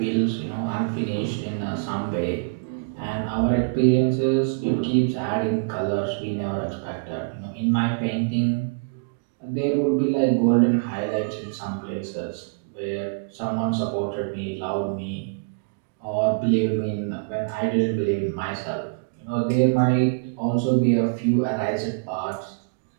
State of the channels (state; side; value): quieter; left; 36.4 dB